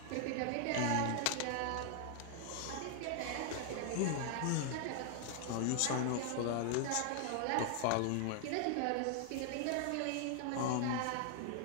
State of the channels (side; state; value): both; different; correlation 0.00